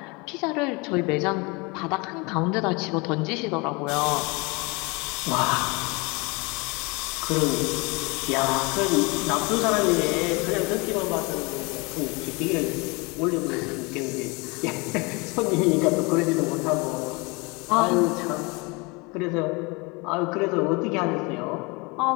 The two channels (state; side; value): quieter; right; 27.6 dB